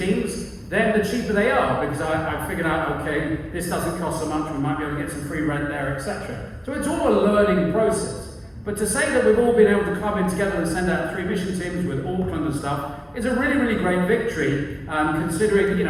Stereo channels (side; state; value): both; identical; correlation 1.00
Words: then the cheaper they are, because I figured out, okay, this doesn't cost so much, we might be able to get some free rent there, etc. So it's all a learning process. But to say that we've all been able to club in together and send out 3 mission teams with Auckland and stuff is a really, really great victory, considering,